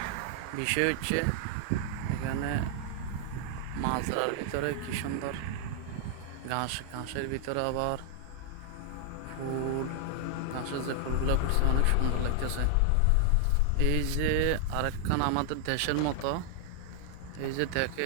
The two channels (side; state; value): both; different; correlation 0.00